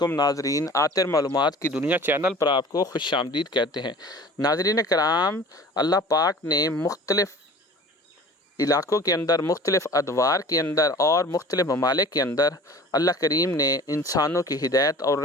ناظرین، آتر معلومات کی دنیا چینل پر آپ کو خوش آمدید کہتے ہیں۔ ناظرین کرام، اللہ پاک نے مختلف علاقوں کے اندر، مختلف ادوار کے اندر اور مختلف ممالک کے اندر اللہ کریم نے انسانوں کی ہدایت اور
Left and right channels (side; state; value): both; normal; correlation 0.43